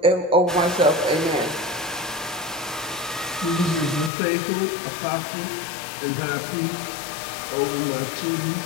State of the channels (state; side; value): drops out; right; at 4.1 s